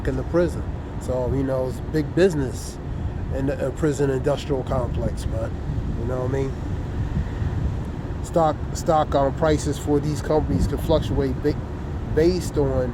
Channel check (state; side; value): identical; both; correlation 1.00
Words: in the prison. So, it's big business in the prison industrial complex, man. You know what I mean? stock prices for these companies can fluctuate based on